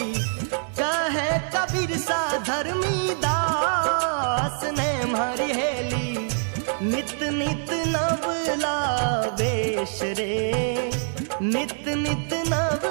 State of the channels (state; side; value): silent; left; digital silence